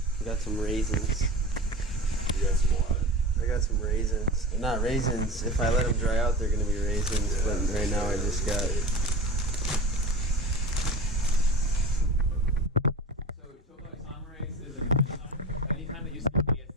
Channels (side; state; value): both; normal; correlation 0.33